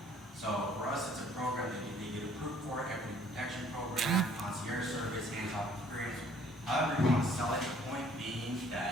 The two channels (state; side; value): normal; both; correlation 0.59